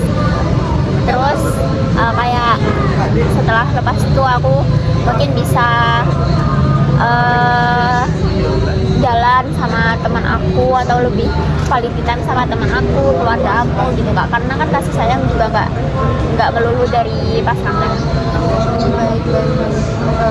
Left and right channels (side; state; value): both; identical; correlation 1.00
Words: Terus kayak setelah lepas itu aku mungkin bisa jalan sama teman aku atau lebih quality time sama teman aku, keluarga aku gitu kak. Karena kan kasih sayang juga nggak melulu dari pasangan. Baik, baik, baik.